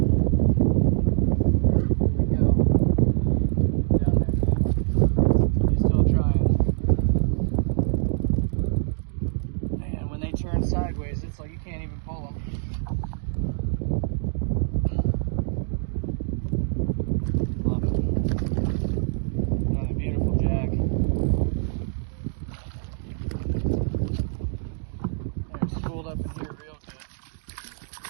we go. Down there. He's still trying. Man, when they turn sideways, it's like you can't even pull them. Up in here real good.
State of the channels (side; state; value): left; silent; digital silence